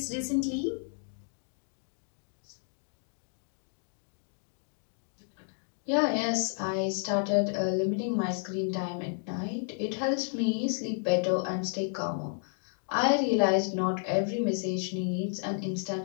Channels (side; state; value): right; silent; 57 dB below the other